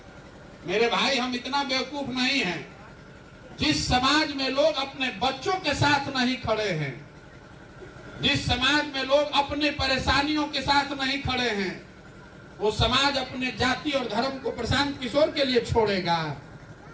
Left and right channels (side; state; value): both; identical; correlation 1.00